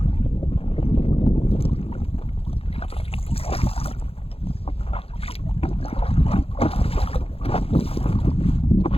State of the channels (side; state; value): right; late; 0.28 ms